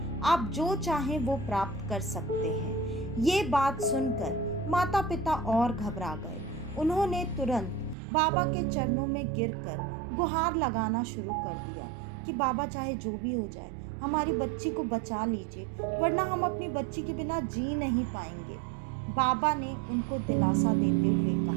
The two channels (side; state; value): left; drops out; at 8.0 s